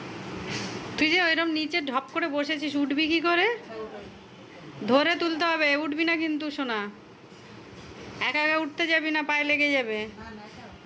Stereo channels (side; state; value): both; identical; correlation 1.00